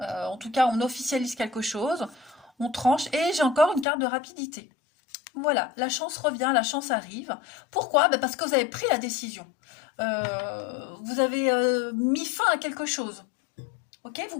tout cas, on officialise quelque chose, on tranche. Et j'ai encore une carte de rapidité. Voilà, la chance revient, la chance arrive. Pourquoi? Parce que vous avez pris la décision. Vous avez mis fin à quelque chose. Ok? ok, vous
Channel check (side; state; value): right; drops out; at 3.9 s